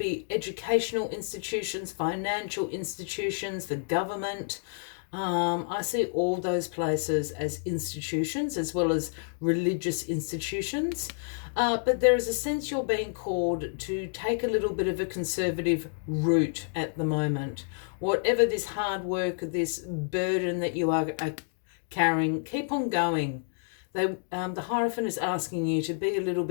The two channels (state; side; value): silent; right; digital silence